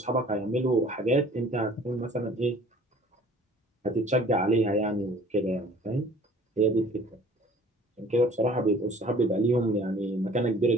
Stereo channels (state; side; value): normal; both; correlation 0.51